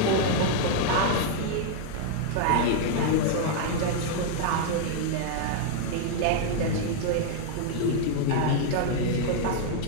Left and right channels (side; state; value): both; different; correlation 0.00